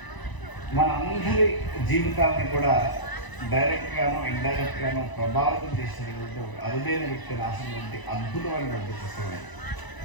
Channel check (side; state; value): right; late; 1.0 ms